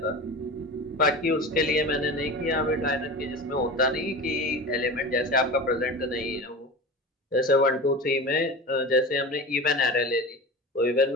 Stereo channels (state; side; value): normal; both; correlation 0.31